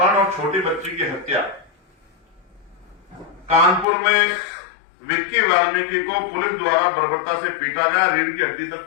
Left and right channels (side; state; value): right; drops out; at 3.9 s